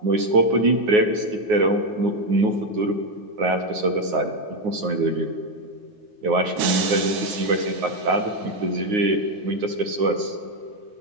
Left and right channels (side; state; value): left; late; 9.6 ms